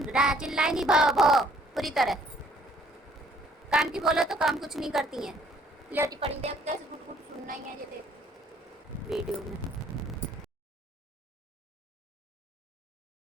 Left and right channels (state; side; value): normal; both; correlation 0.62